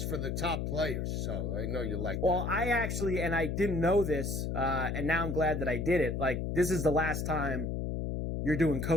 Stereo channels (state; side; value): noise; left; hum, 2 dB below the sound